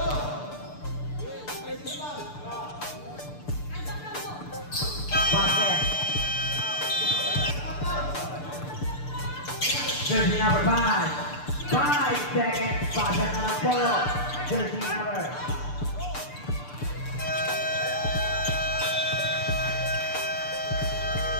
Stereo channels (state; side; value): late; right; 6.8 ms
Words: Basket. Jersey number 5. 5 seconds. Basket na lang po. Jersey number.